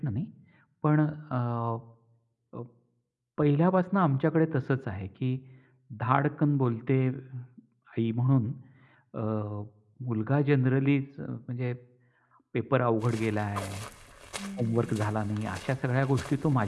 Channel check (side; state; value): both; identical; correlation 1.00